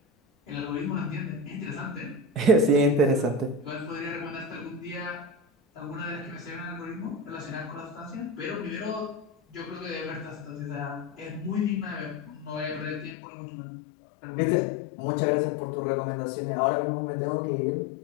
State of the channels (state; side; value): drops out; right; at 13.2 s